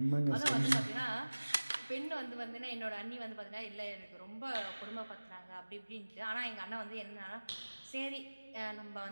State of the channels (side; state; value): both; inverted; correlation -1.00